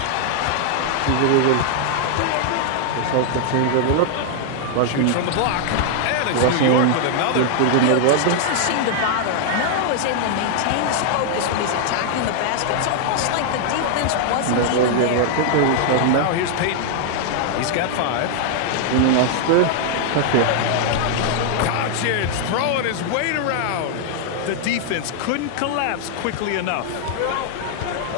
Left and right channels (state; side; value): different; both; correlation 0.00